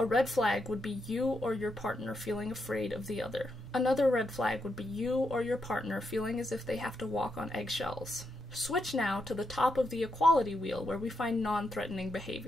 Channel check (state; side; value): normal; both; correlation 0.82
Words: red flag would be you or your partner feeling afraid of the other. Another red flag would be you or your partner feeling as if they have to walk on eggshells. Switch now to the top of the equality wheel where we find non-threatening